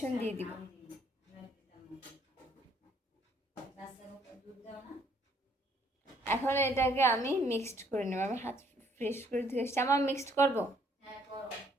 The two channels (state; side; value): normal; both; correlation 0.65